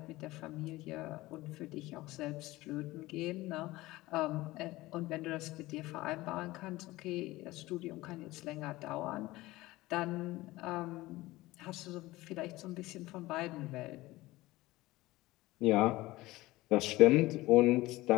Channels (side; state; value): right; quieter; 18.8 dB